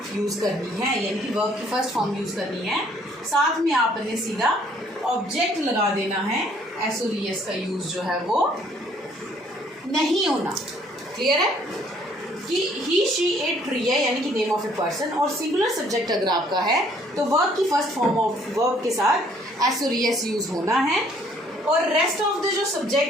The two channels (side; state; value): both; normal; correlation 0.62